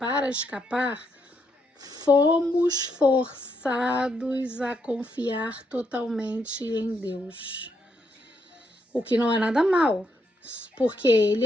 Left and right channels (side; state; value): both; normal; correlation 0.78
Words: escapar, fomos forçados a confiar totalmente em Deus. O que não é nada mal, porque Ele